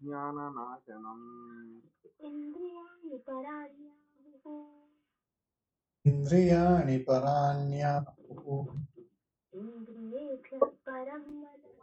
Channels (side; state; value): both; identical; correlation 1.00